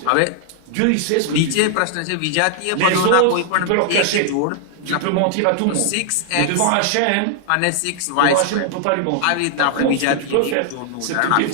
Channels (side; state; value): both; different; correlation 0.00